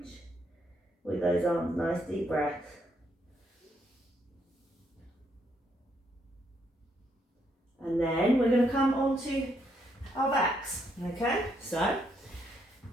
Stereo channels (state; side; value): normal; both; correlation 0.75